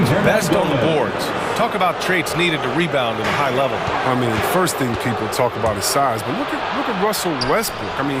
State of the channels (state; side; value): identical; both; correlation 1.00